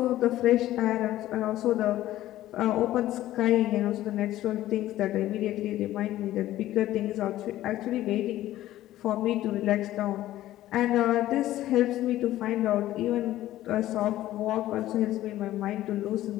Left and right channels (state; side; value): quieter; right; 14.4 dB